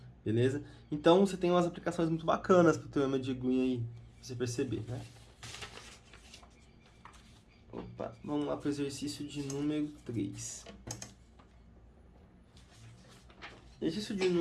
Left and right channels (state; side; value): identical; both; correlation 1.00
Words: Beleza? Então, você tem umas aplicações muito bacanas pro teorema de Green aí, pra você perceber, né? Opa, vamos lá pro exercício de número 3. Exercício de